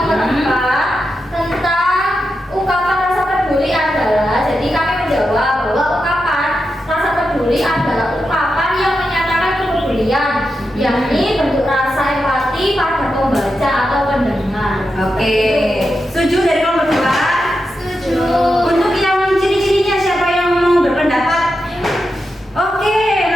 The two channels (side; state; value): both; normal; correlation 0.88